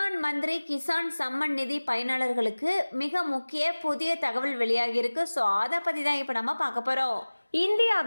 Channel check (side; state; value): both; inverted; correlation -1.00